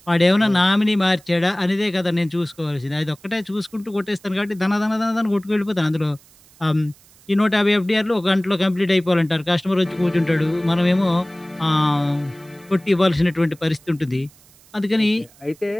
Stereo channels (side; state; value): right; noise; hiss, 27 dB below the sound